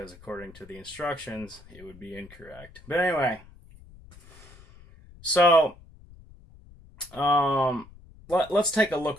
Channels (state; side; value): noise; left; rumble, 22 dB below the sound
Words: according to the instructions, it would be incorrect. But anyway, so let's take a